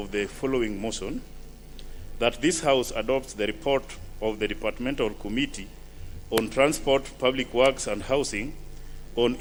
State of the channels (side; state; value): both; identical; correlation 1.00